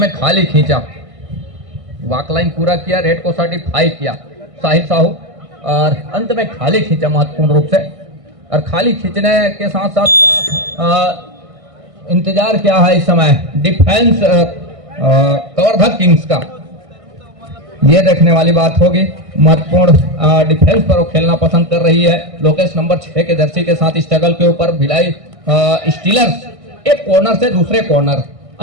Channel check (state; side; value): late; left; 1.6 ms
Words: खाली खींचा। वॉकलाइन पूरा किया, रेड को सर्टिफाई किया साहिल साहू, और अंत में खाली खींचा महत्वपूर्ण रूप से। और खाली खींचने के साथ साथ इंतजार क्या है इस समय डिफेंस कवर्धा किंग्स का, ये देखने वाली बात होगी। महत्वपूर्ण डिफेंस पर वो खेलना पसंद कर रही है लोकेश नंबर 6 के जर्सी के साथ। स्ट्रगल के ऊपर भिलाई स्टीलर्स एक कॉर्नर से दूसरे कॉर्नर,